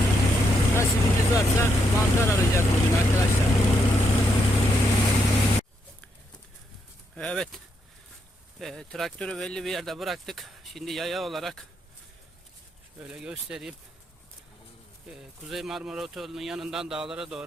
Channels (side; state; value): both; normal; correlation 0.79